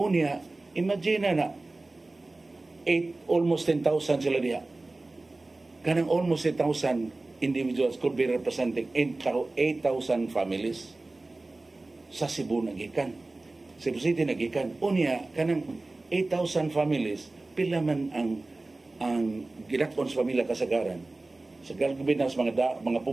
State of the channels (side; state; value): left; quieter; 3.1 dB